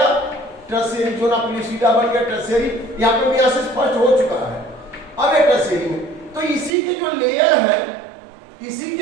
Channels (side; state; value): left; drops out; at 6.8 s